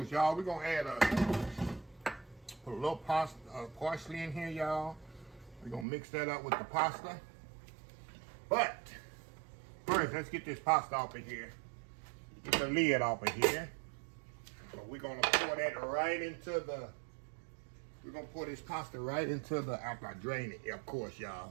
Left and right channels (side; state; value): left; drops out; at 5.9 s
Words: y'all, we're gonna add put a little parsley in here, y'all. We're gonna mix that up with the pasta. But first, let's get this pasta off of here. Get the lid off of here. So we're gonna pour that right into the, we're gonna pour this pasta right into the, after I drain it, of course,